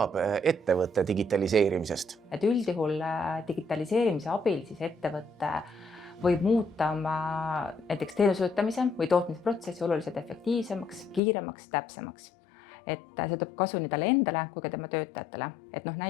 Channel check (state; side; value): drops out; right; at 11.2 s